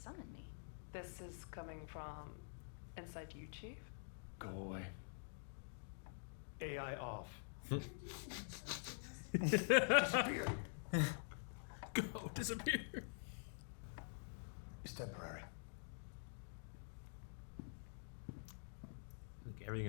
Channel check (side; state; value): right; silent; digital silence